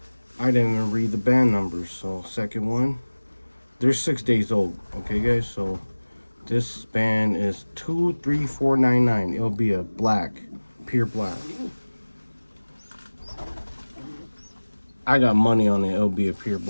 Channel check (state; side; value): inverted; both; correlation -1.00